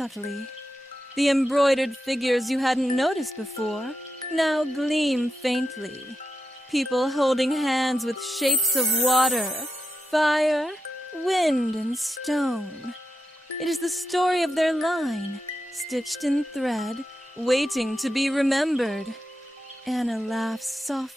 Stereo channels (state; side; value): normal; both; correlation 0.88